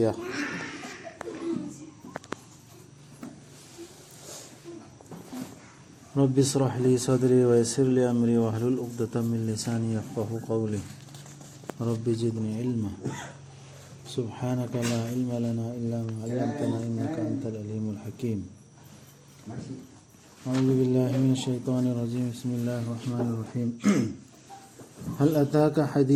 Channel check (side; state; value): both; identical; correlation 1.00